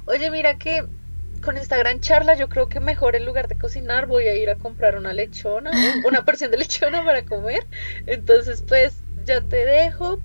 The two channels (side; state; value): both; inverted; correlation -1.00